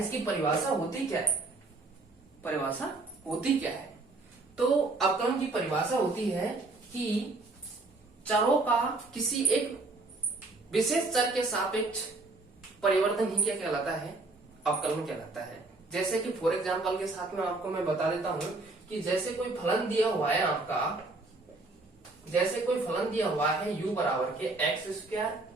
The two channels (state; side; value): quieter; left; 3.3 dB